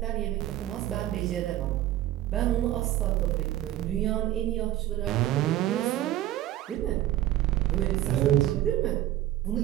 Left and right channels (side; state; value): left; quieter; 13.7 dB